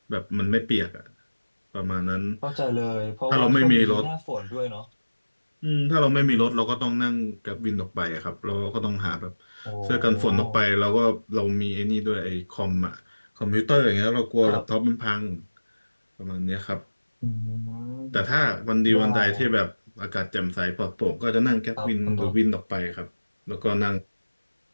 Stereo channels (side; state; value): both; inverted; correlation -1.00